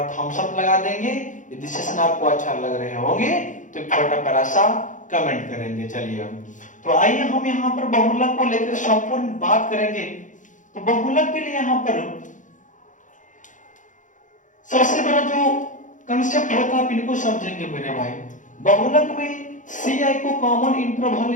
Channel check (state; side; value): late; right; 0.37 ms